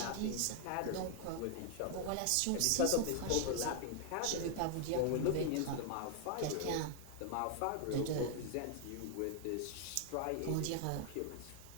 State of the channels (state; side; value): different; both; correlation 0.00